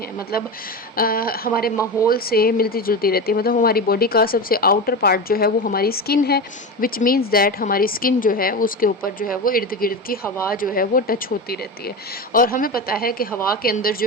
मतलब हमारे माहौल से मिलती जुलती रहती है। मतलब हमारी बॉडी का सबसे आउटर पार्ट जो है वो हमारी स्किन है, विच मीन्स दैट हमारी स्किन जो है उसके ऊपर जो है वो इर्द गिर्द की हवा जो है वो टच होती रहती है। और हमें पता है कि हवा के अंदर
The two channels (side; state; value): both; normal; correlation 0.22